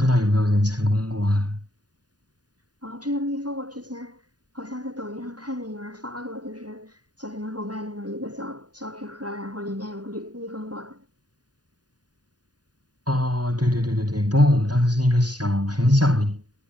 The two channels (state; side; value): late; left; 0.69 ms